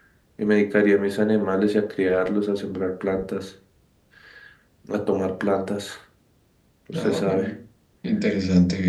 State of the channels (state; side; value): identical; both; correlation 1.00